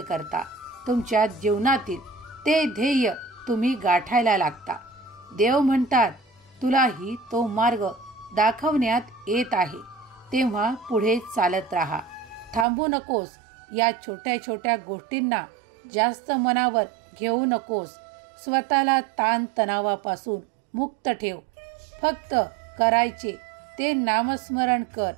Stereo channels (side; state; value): left; drops out; at 12.7 s